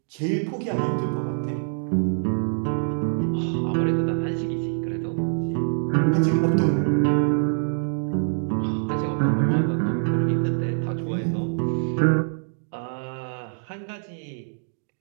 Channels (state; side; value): silent; left; digital silence